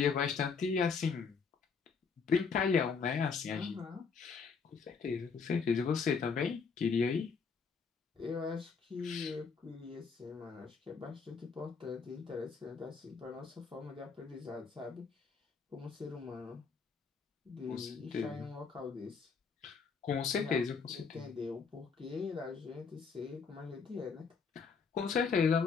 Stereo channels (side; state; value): right; quieter; 5.5 dB